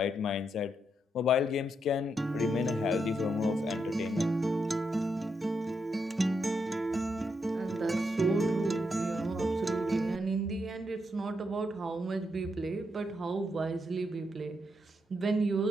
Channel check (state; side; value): normal; both; correlation 0.81